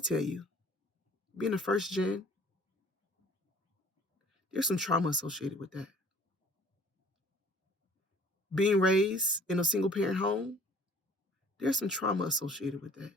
you, being a first gen, there's some trauma associated with that. Being raised in a single parent home, there's some trauma associated with that.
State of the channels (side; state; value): both; normal; correlation 0.52